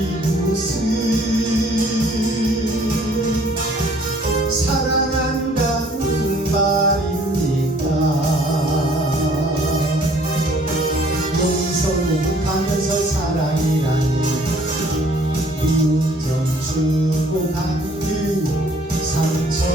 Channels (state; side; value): normal; both; correlation 0.58